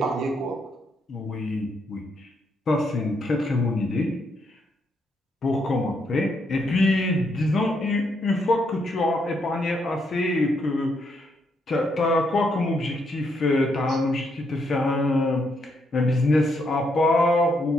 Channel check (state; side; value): normal; both; correlation 0.76